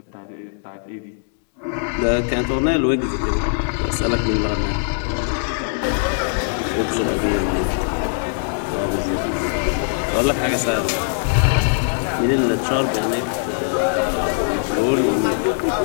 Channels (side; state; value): right; silent; digital silence